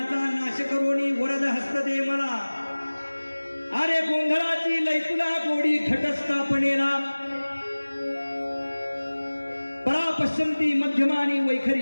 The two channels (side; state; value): both; inverted; correlation -1.00